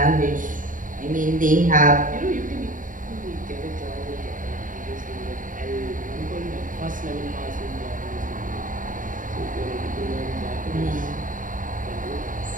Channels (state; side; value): late; left; 0.38 ms